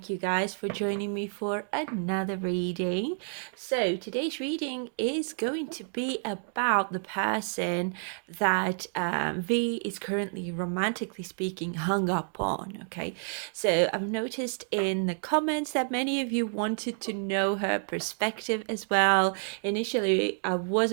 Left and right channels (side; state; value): left; silent; 58 dB below the other